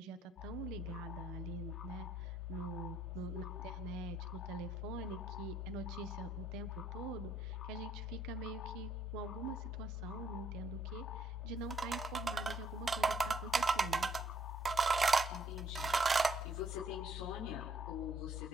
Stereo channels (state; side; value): normal; both; correlation 0.67